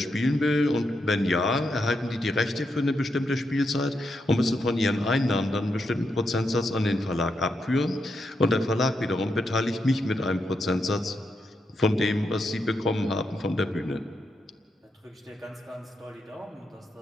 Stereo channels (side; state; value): both; normal; correlation 0.83